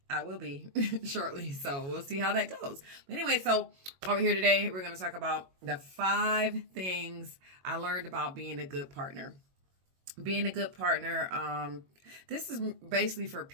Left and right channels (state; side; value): late; left; 22 ms